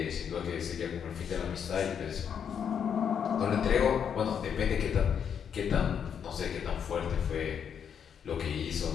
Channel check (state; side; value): quieter; right; 7.8 dB